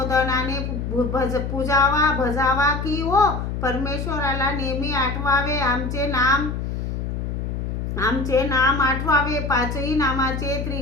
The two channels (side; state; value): left; noise; hum, 3 dB below the sound